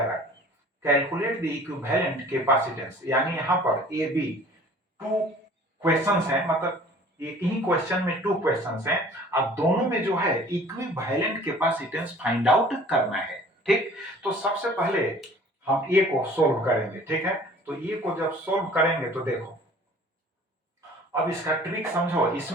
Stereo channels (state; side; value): normal; both; correlation 0.49